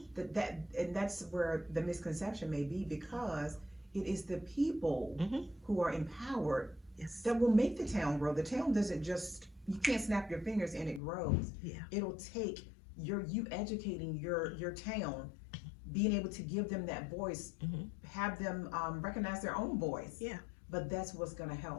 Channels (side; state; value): right; drops out; at 11.0 s